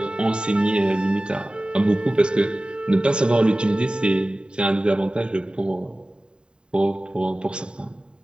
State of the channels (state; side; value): late; left; 0.050 ms